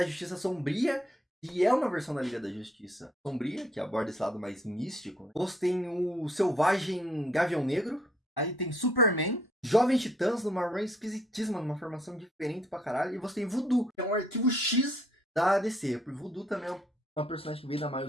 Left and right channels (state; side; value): normal; both; correlation 0.67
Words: Justiça Sombria, que é uma versão da Liga da Justiça Sombria, que aborda esse lado mais místico. Né? Você tem o Selvagem Gavião Negro. Aí tem Superman. Jovem Titãs, numa run esquisitíssima, numa formação diferente pra caralho. E você tem Voodoo, que é um arquivo X da DC. Porque Voodoo também é uma personagem que veio da